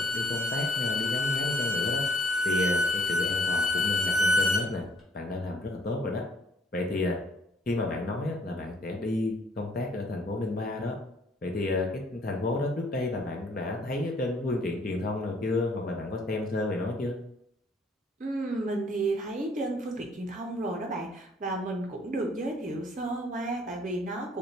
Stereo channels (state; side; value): normal; both; correlation 0.62